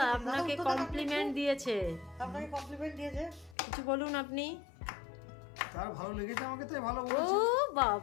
আপনাকে কমপ্লিমেন্ট দিয়েছে, আপনাকে কমপ্লিমেন্ট দিয়েছে। কিছু বলুন আপনি। তার ভালো লেগেছে আমাকে, তাই ভালো ও বলেছে।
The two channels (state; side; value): drops out; right; at 3.6 s